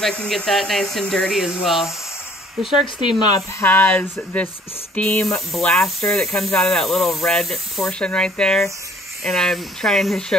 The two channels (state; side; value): normal; both; correlation 0.58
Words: I can get that nice and dirty as well. The Shark Steam Mop has this steam blaster that comes out of that little red portion right there. And I'm trying to